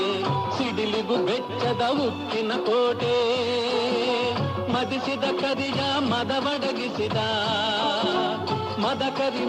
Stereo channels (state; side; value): identical; both; correlation 1.00